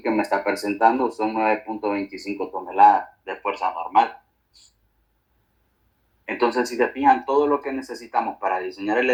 que me está presentando son 9.25 toneladas de fuerza normal. Entonces, si se fijan, todo lo que necesitamos para diseñar el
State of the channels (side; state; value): both; identical; correlation 1.00